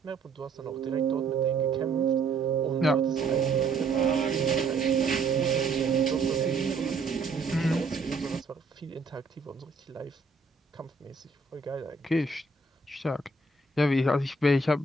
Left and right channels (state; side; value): quieter; left; 3.9 dB